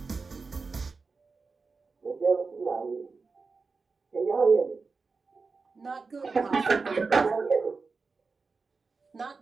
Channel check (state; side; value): quieter; left; 4.4 dB